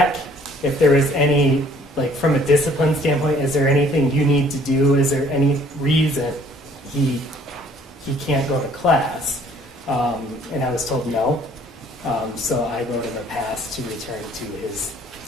if there was any, like from a discipline standpoint, is there anything you need to do? Is there any reason he can't go to class? And I was told no. So I wrote him a pass to return to his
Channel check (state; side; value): normal; both; correlation 0.58